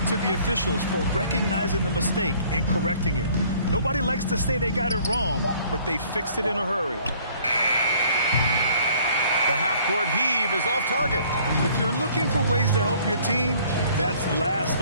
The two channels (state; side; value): inverted; both; correlation -0.57